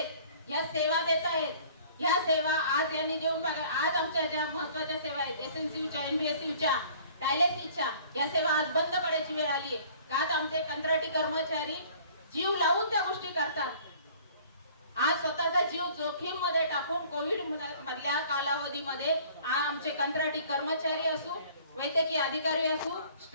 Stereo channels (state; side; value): inverted; both; correlation -0.52